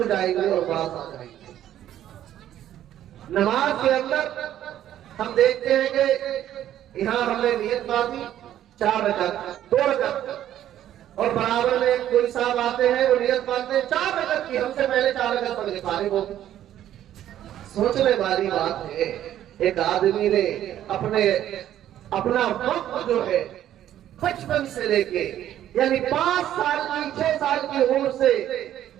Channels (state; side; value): quieter; left; 11.8 dB